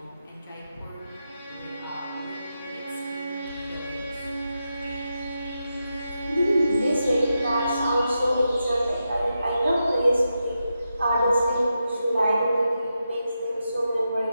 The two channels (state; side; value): inverted; both; correlation -0.87